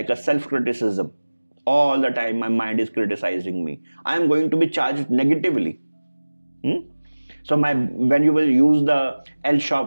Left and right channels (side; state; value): both; inverted; correlation -1.00